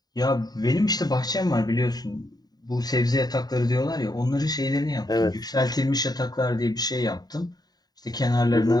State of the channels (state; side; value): late; right; 0.19 ms